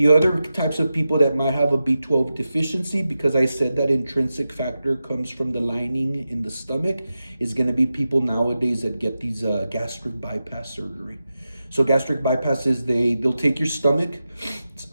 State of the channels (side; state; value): both; inverted; correlation -0.92